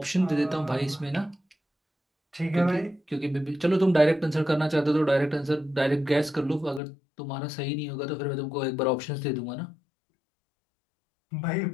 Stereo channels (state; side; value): drops out; right; at 6.8 s